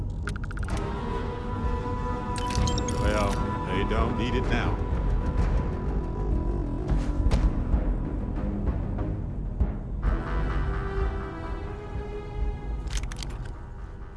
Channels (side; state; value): both; identical; correlation 1.00